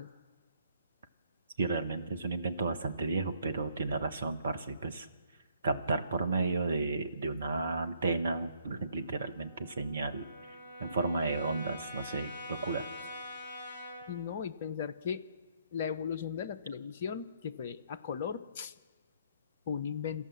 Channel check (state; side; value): inverted; both; correlation -0.68